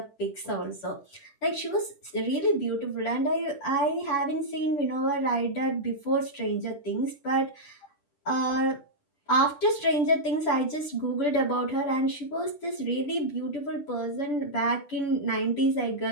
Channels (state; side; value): late; right; 10 ms